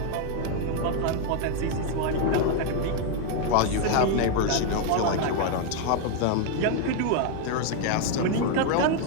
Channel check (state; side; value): different; both; correlation 0.01